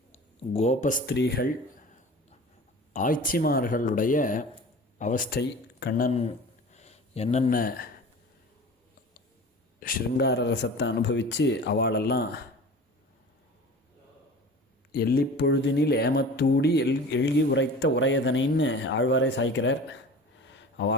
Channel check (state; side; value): normal; both; correlation 0.38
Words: கோபஸ்திரீகள் ஆய்ச்சிமார்களுடைய அவஸ்தை, கண்ணன் என்னென்ன ஸ்ருங்கார ரசத்தை அனுபவித்து அவளெல்லாம் எல்லிப்பொழுதினில் ஏமத்தூடி எழுகி உரைத்த உரையதனைன்னு ஆழ்வாரே சாய்க்கிறார்.